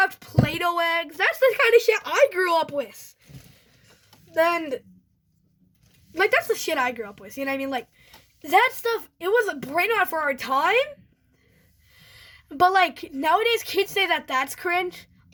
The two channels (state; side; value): identical; both; correlation 1.00